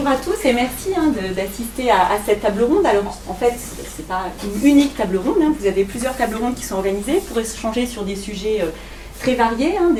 à tous et merci d'assister à cette table ronde. Alors en fait, ce n'est pas une unique table ronde, vous avez plusieurs tables rondes qui sont organisées pour échanger sur des sujets très variés,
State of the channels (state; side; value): identical; both; correlation 1.00